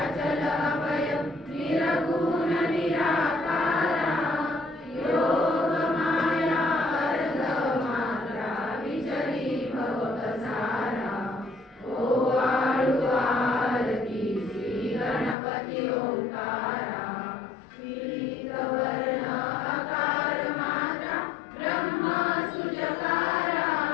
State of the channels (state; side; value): drops out; right; at 15.4 s